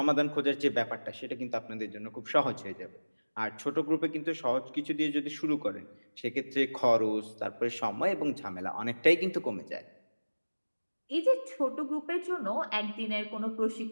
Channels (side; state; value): both; inverted; correlation -1.00